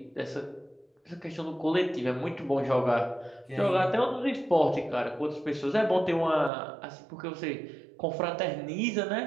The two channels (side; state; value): left; drops out; at 6.5 s